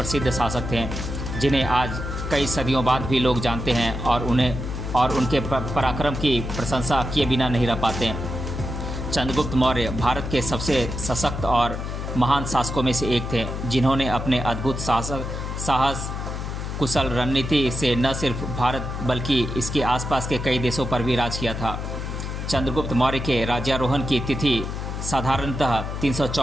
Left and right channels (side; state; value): left; noise; hum, 5 dB below the sound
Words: शासक थे जिन्हें आज कई सदियों बाद भी लोग जानते हैं और उनके पराक्रम की प्रशंसा किए बिना नहीं रह पाते। चंद्रगुप्त मौर्य भारत के सबसे सशक्त और महान शासकों में से एक थे जिन्होंने अपने अद्भुत साहस कुशल रणनीति से न सिर्फ भारत बल्कि इसके आसपास के कई देशों पर भी राज किया था। चंद्रगुप्त मौर्य के राज्यारोहण की तिथि साधारणतः